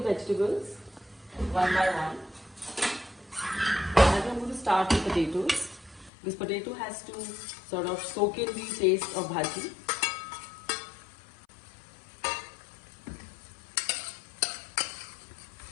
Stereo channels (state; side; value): drops out; right; at 6.1 s